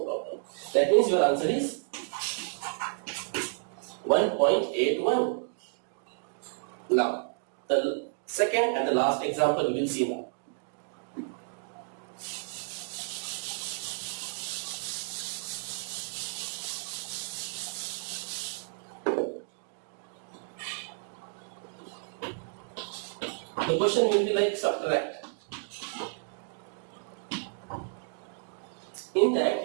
problem. That means your answer is 1.81. Now, the second and the last example we will see now. The question will be like subtract. In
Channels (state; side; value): silent; left; digital silence